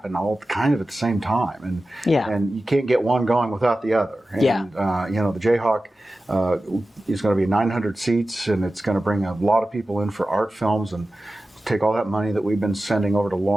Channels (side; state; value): both; normal; correlation 0.95